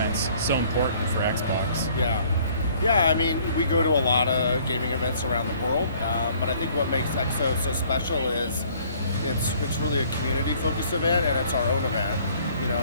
so important for Xbox. Yeah, I mean, we go to a lot of gaming events around the world, but I think what makes XO so special is it's really a community-focused event, and it's our own event. You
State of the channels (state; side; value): inverted; both; correlation -0.58